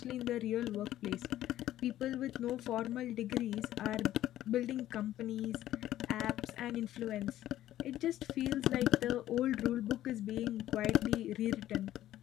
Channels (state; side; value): quieter; right; 13.3 dB